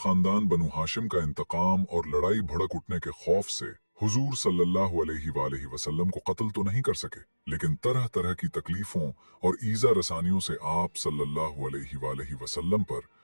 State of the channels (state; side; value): inverted; both; correlation -1.00